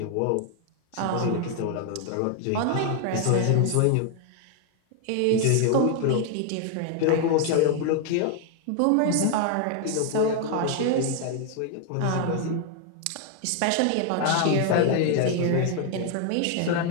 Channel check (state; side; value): different; both; correlation 0.00